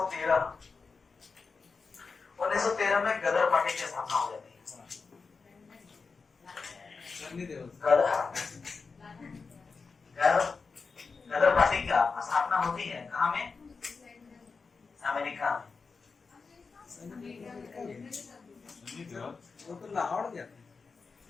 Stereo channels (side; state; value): right; quieter; 4.7 dB